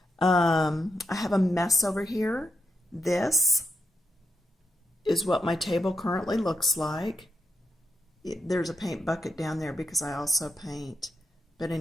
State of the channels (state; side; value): normal; both; correlation 0.84